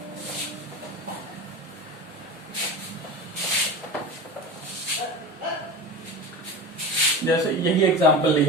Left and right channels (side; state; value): both; normal; correlation 0.28